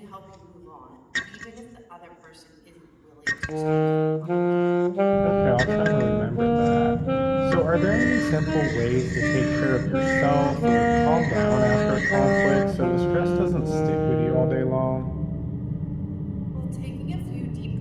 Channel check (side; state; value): both; identical; correlation 1.00